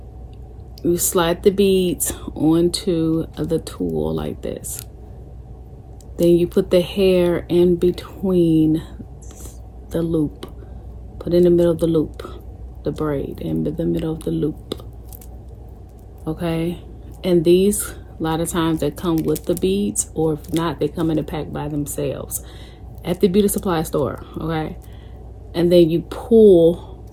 You slide the beads onto the tool like this. Then you put the hair in between the loop. Put in the middle of the loop, the braid in the middle of the loop. Okay, and these, a lot of times they come with the beads, or if not, they come in a pack by themselves at the beauty supply store. Okay, and then you pull.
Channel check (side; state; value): both; identical; correlation 1.00